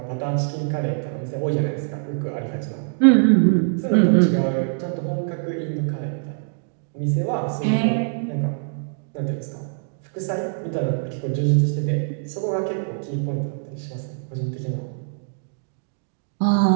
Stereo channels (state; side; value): silent; left; digital silence